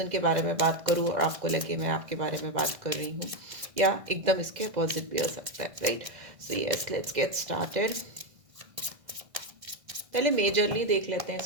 के बारे में बात करूँ और आपको लगे मैं आपके बारे में बात कर रही हूँ, या एकदम इसके अपोजिट भी हो सकता है, right. So yes, let's get started. पहले मेजरली देख लेते हैं इस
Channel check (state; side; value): late; left; 1.6 ms